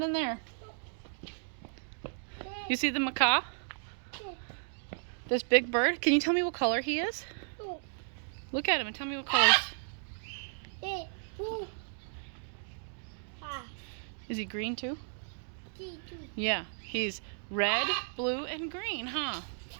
in there. Okay. You see the macaw? Okay. This big bird? Can you tell me what color he is? Go. Look at him and tell me what colors. Okay. Ooh. Ah. Is he green too? Two. Yeah. He's red, blue, and green, huh?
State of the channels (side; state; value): left; silent; digital silence